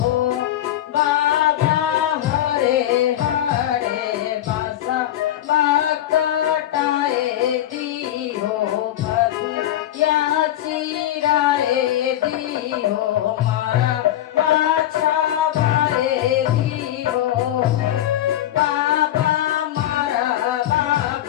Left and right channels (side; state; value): right; quieter; 12.6 dB